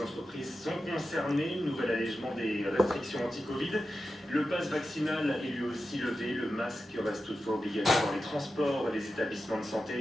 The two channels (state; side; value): normal; both; correlation 0.91